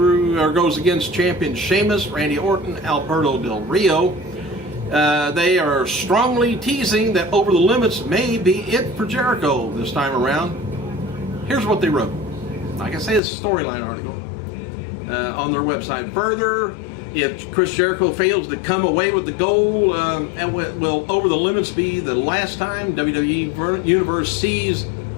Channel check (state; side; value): drops out; right; at 13.2 s